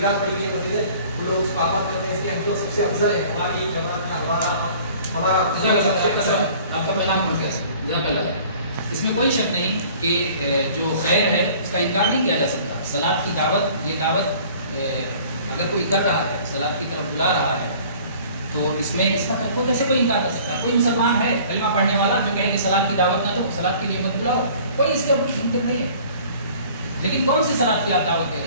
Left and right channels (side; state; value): both; inverted; correlation -0.50